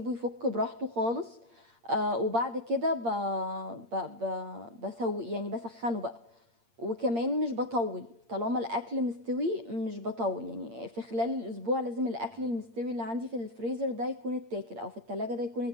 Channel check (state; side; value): late; left; 8.7 ms